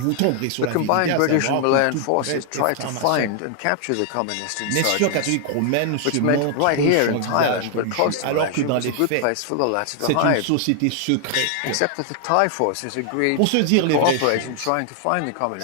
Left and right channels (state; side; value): different; both; correlation 0.00